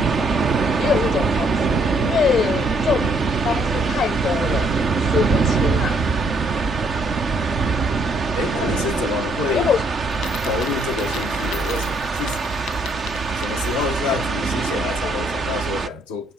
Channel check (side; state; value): both; normal; correlation 0.68